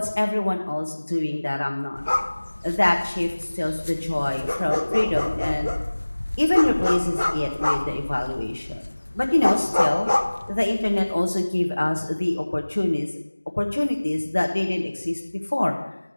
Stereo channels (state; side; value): inverted; both; correlation -1.00